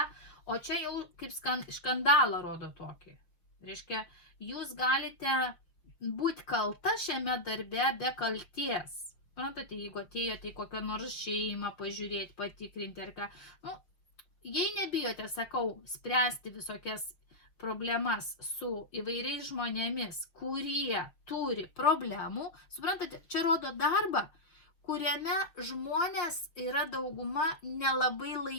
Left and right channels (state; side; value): late; right; 5.8 ms